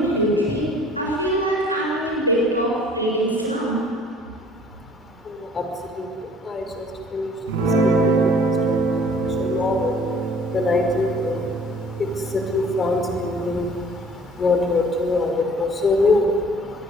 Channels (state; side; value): normal; both; correlation 0.54